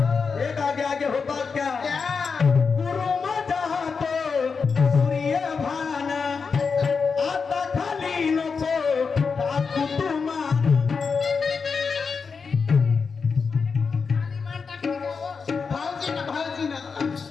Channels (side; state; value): right; quieter; 5.3 dB